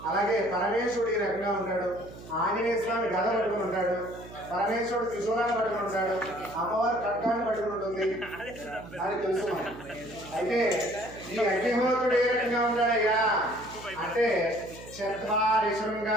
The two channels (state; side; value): noise; right; hum, 16 dB below the sound